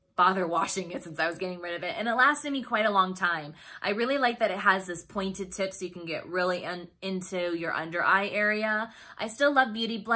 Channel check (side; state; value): both; identical; correlation 1.00